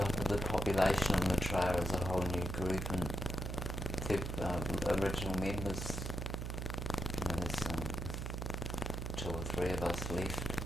the population of Maitreya is a whole new group, and the original members, there's 2 or 3 of us left,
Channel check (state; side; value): noise; right; hum, 4 dB below the sound